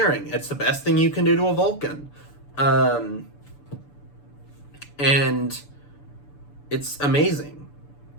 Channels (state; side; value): late; right; 6.9 ms